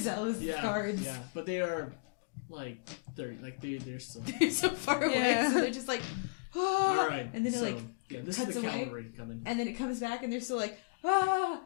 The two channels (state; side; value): quieter; right; 32.9 dB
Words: Yeah, guards. yeah, but they are they're still. They're so far away, Yeah. so they're just like, All right. and then it so, like this cuts is the away. cavalry coming. and then it comes back, and they're still like, and